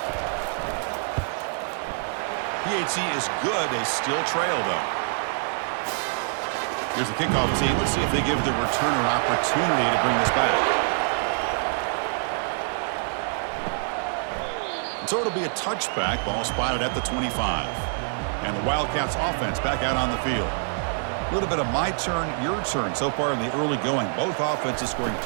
PHC is good. They still trail, though. Here's the kickoff team. Let's see if they give the returner opportunity to bring this back. And so it'll be a touchback. Ball spotted at the 25. And the Wildcats offense back out on the field. A little bit of my turn, your turn so far in the early going. Both offenses scoring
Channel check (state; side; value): silent; left; 61 dB below the other